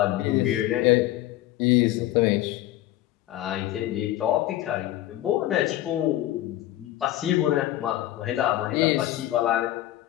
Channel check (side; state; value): right; quieter; 14.6 dB